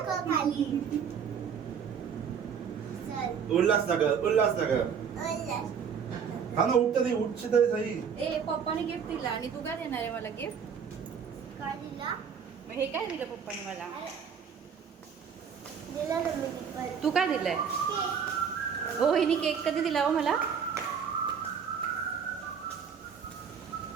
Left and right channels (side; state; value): left; quieter; 7.0 dB